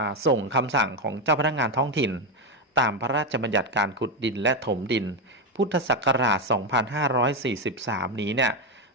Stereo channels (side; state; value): both; normal; correlation 0.09